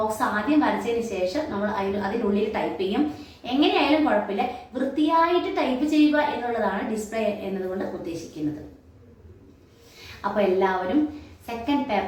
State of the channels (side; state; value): both; identical; correlation 1.00